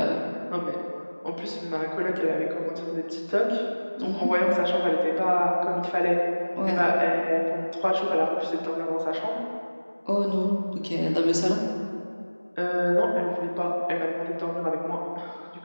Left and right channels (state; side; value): inverted; both; correlation -1.00